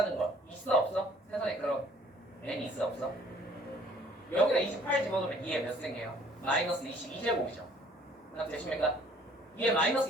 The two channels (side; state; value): both; normal; correlation 0.57